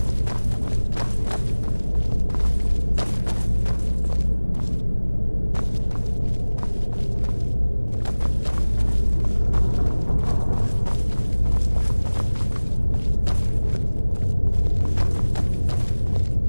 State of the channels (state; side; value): inverted; both; correlation -1.00